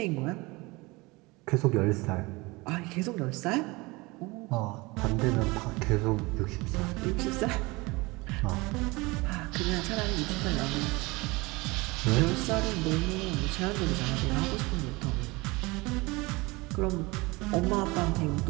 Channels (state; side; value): quieter; left; 23.7 dB